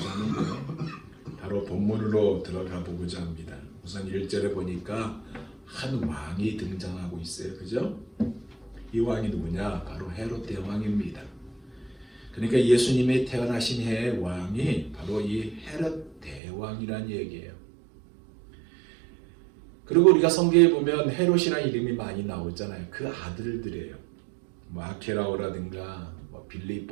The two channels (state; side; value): drops out; left; at 16.4 s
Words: 하는데 바로 본문으로 들어가 보고자 합니다. 우선 1절에 보니까 한 왕이 등장하고 있어요. 그죠? 이 왕이 누구냐? 바로 헤롯 대왕입니다. 그러니까 예수님이 태어나신 해의 왕이 바로 이 헤롯 대왕이라는 얘기예요. 그리고 우리가 성경에 보면 헤롯이라는 이름이 많이 나오잖아요. 그 아들들이에요. 아케라오라든가